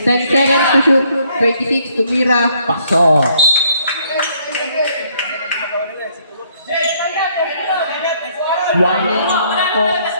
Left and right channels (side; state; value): both; inverted; correlation -0.66